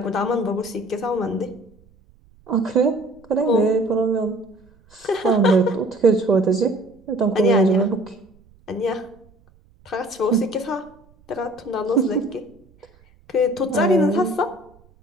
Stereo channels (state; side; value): noise; right; rumble, 30 dB below the sound